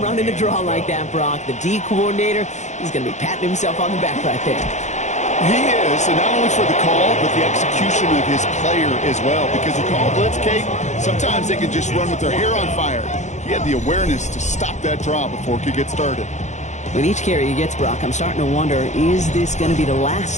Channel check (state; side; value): late; right; 0.34 ms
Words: running the draw like that, Brock, the D coordinator, he's going to be patting himself on the back right there. He is, and not only for the call, but the execution of his player as well. Because you call a blitz, Kate, sometimes they can just run with their hair on fire. He had the awareness to stop that draw before it could get started. With each carry he gets, Brock, I'm starting to wonder, is this going to be the